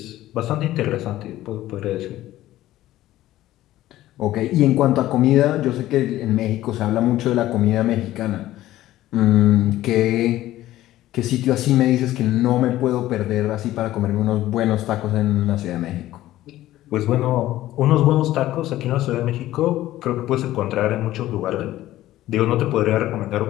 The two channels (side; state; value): right; quieter; 14.9 dB